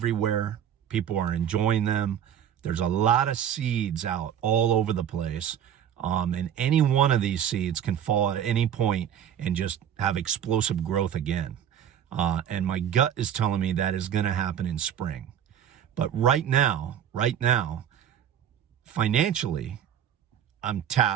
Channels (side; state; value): left; quieter; 9.6 dB